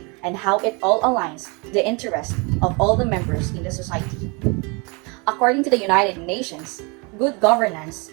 and how it all aligns the interest of all the members in the society. According to the United Nations, good governance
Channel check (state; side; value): quieter; left; 30.3 dB